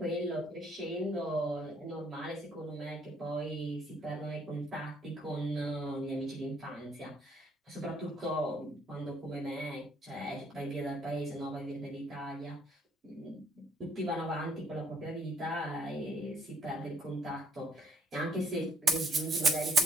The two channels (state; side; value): normal; both; correlation 0.67